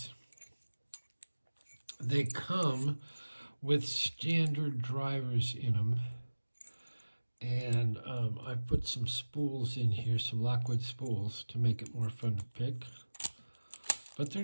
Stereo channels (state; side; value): inverted; both; correlation -1.00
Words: They come with standard drivers in them. And I've put some spools in here, some Lockwood spools, to make it more fun to pick. But